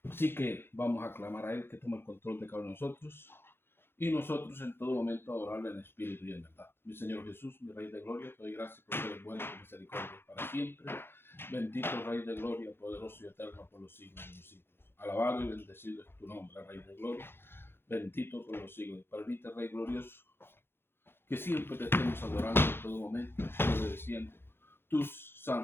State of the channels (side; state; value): right; late; 0.11 ms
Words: Así que vamos a clamar a Él que tome el control de cada uno de nosotros y nosotros en todo momento adorarle en espíritu y en verdad. Mi Señor Jesús, mi Rey de Gloria, te doy gracias porque eres bueno y tu misericordia es para siempre. Bendito Rey de Gloria, poderoso y eterno por los siglos de los siglos. Alabado y bendecido es tu nombre, Rey de Gloria. Bendito por los siglos. Permite, Rey glorioso, que siempre te estemos adorando en todo momento, obedeciendo tus